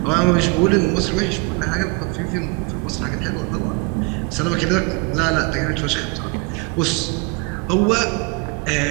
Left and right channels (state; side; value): quieter; left; 29.9 dB